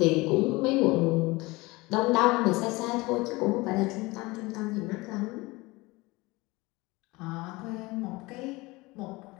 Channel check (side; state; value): right; quieter; 22.4 dB